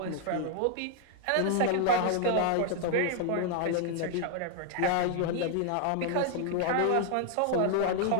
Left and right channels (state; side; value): different; both; correlation 0.00